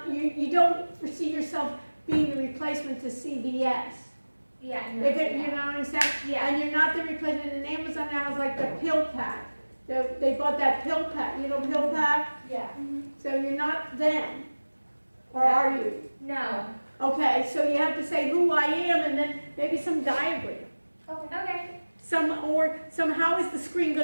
don't foresee yourself being the replacement to CVS. Yeah. If it, you know what I'm saying? Yeah. And you're not the replacement, and Amazon now is like the pill pack. They bought that pill pack, pill pack? Yeah. So you're not them, or are you? No. Okay, so you have to say who I am, and then maybe some diagram. Okay. Or how is the screen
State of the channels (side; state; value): both; inverted; correlation -1.00